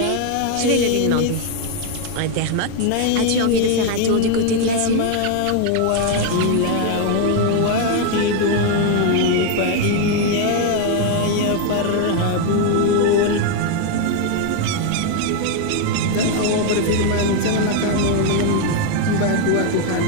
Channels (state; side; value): different; both; correlation 0.01